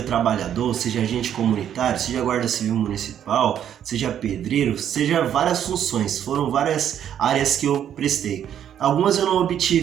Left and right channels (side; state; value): left; quieter; 9.8 dB